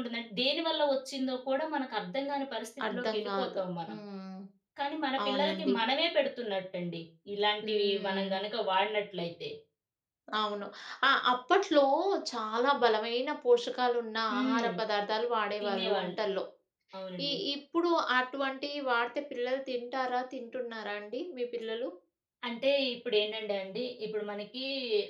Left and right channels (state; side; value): identical; both; correlation 1.00